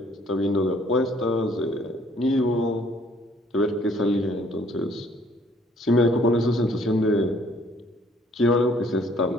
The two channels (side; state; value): both; normal; correlation 0.61